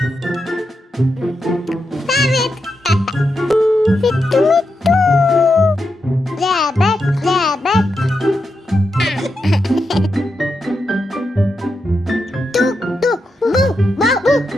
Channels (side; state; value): both; normal; correlation 0.86